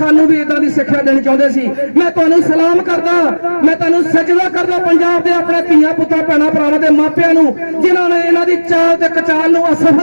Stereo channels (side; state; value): both; inverted; correlation -1.00